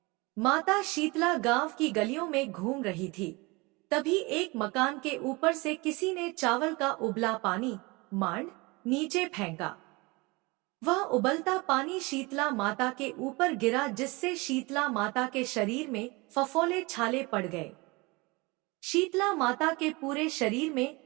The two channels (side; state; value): left; quieter; 25.3 dB